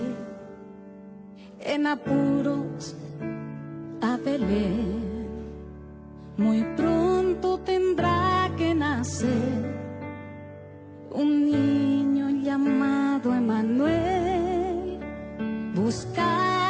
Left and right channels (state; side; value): identical; both; correlation 1.00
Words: en apuros a Belén. Muy pronto tendrá que nacer un niño llamado Emmanuel.